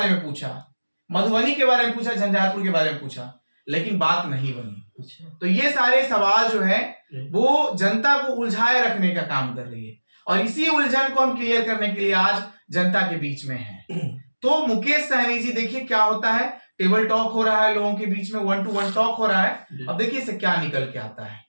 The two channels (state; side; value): inverted; both; correlation -1.00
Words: में पूछा, मधुबनी के बारे में पूछा, झंझारपुर के बारे में पूछा, लेकिन बात नहीं बनी। अच्छा तो ये सारे सवाल जो है जी। वो जनता को उलझाए रखने का काम कर रही है और इसी उलझन को हम क्लियर करने के लिए आज जनता के बीच में है। तो मुकेश सहनी जी, देखिए क्या होता है, टेबल टॉक हो रहा है लोगों के बीच में, 1-to-1 टॉक हो रहा है। जी। अब देखिए इससे क्या निकल के आता है।